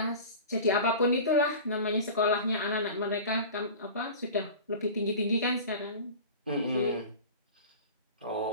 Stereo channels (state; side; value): inverted; both; correlation -0.36